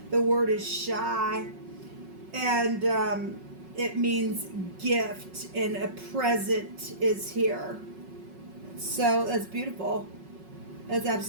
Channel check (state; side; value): late; left; 5.4 ms